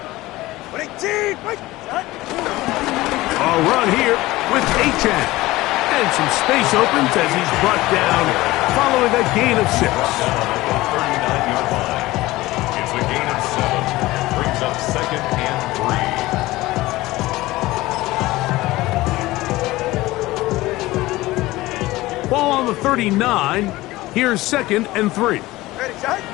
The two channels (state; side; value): quieter; right; 18.6 dB